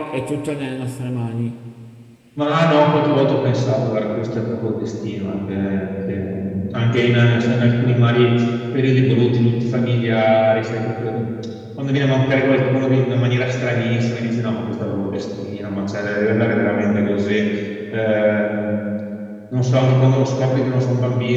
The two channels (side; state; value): both; identical; correlation 1.00